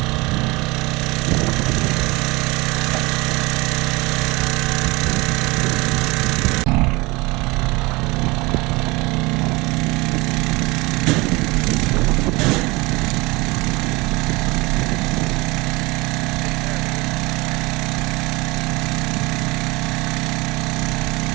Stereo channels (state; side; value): quieter; left; 23.7 dB